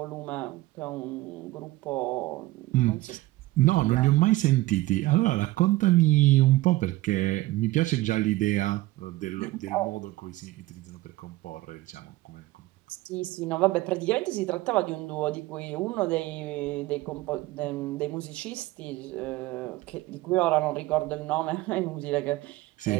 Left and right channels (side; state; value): left; quieter; 18.4 dB